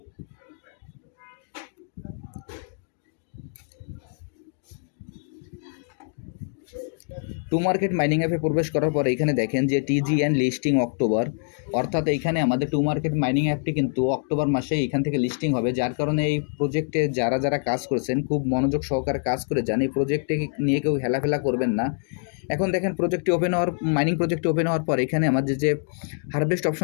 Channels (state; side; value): silent; right; digital silence